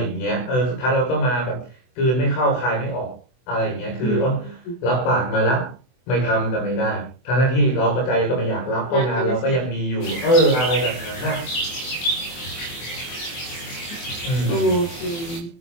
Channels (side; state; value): right; late; 24 ms